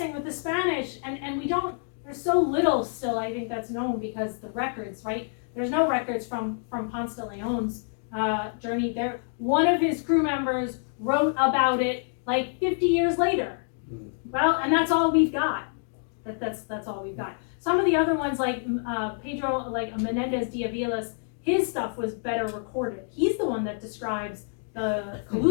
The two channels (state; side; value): silent; right; digital silence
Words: with the Spanish, and we don't, there's so little still, I think, that's known because the records, right? There's no records from Ponce de Leon's journey there. One of his crew members wrote about it like 50 years later. Well, and that's all we've got. That's all we've got. Some of the other ones, like Pedro, like Menendez de Avila's, his stuff was better recorded. He's the one that describes the